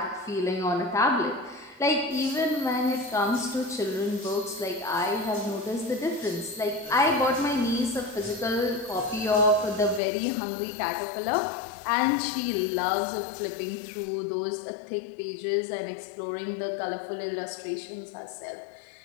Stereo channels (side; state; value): right; drops out; at 10.0 s